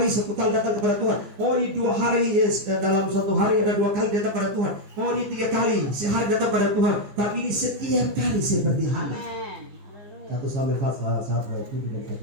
satu kali datang kepada Tuhan. Oh ini 2 hari, dalam satu hari ada 2 kali datang kepada Tuhan. Oh ini 3 kali sehari datang kepada Tuhan. Tapi ini setiap kali seperti Hana. 1 Samuel pasal 1 ayat 7 dan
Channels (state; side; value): late; left; 15 ms